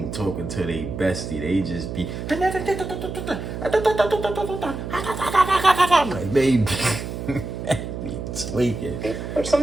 talking to their bestie. They just be like, baby, tweaking. Which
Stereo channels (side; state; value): right; noise; hum, 7 dB below the sound